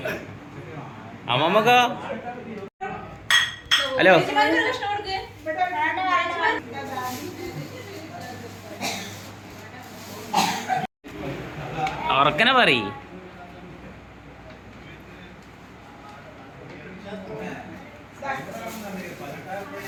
അമ്മമ്മക്കോ ഹലോ ഉറക്കനെ പറയ്.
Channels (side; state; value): both; identical; correlation 1.00